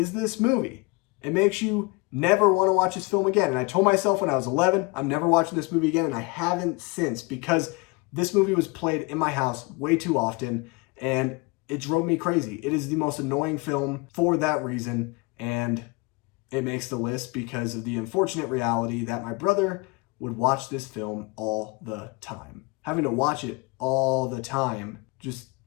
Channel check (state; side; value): quieter; right; 26.5 dB